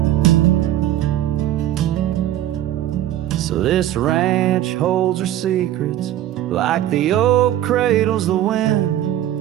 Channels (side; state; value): left; quieter; 12.7 dB